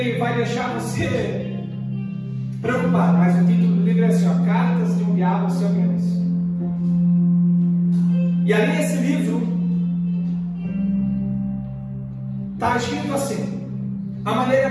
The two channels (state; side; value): identical; both; correlation 1.00